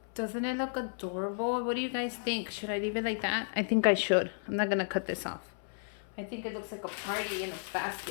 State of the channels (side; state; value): right; silent; 56 dB below the other